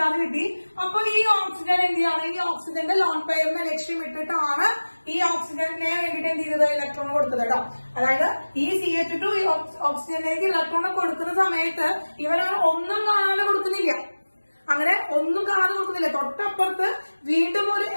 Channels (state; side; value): inverted; both; correlation -1.00